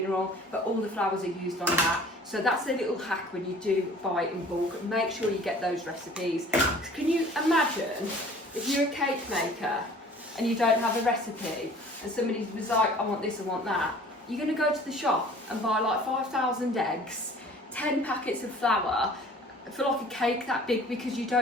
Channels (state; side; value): normal; both; correlation 0.48